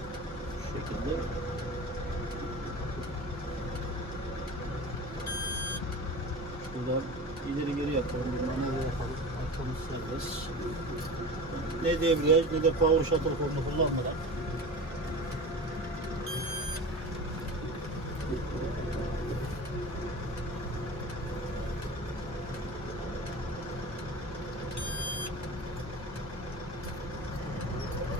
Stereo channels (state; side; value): normal; both; correlation 0.33